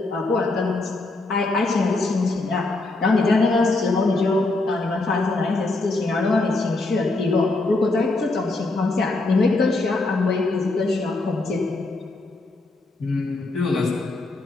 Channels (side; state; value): right; quieter; 3.1 dB